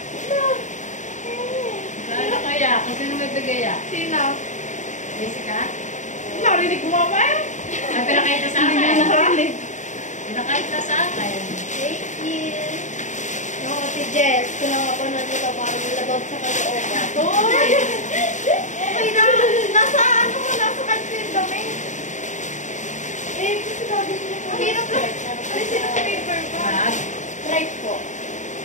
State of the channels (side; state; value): right; late; 0.35 ms